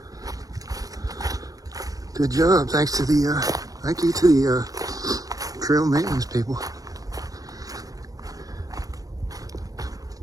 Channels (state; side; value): late; left; 0.18 ms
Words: Good job. Thanks to the thank you to the trail maintenance people.